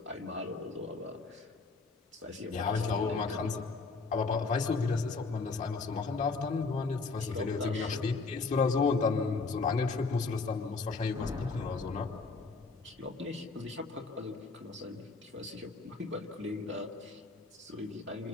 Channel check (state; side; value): quieter; right; 4.1 dB